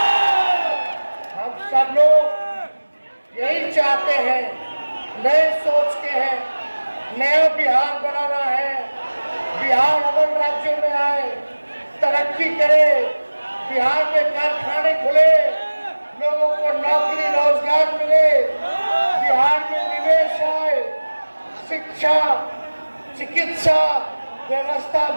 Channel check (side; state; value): both; inverted; correlation -1.00